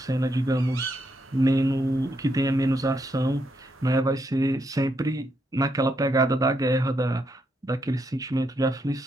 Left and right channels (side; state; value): both; normal; correlation 0.78